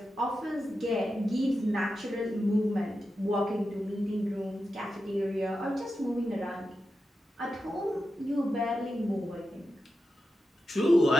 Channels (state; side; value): normal; both; correlation 0.90